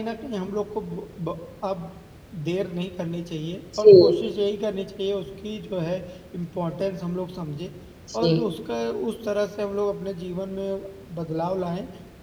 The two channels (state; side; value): identical; both; correlation 1.00